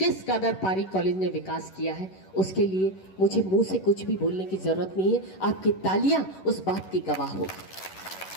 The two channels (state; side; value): late; right; 11 ms